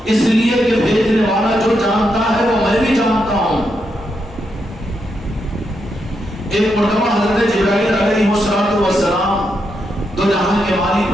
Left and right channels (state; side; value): normal; both; correlation 0.82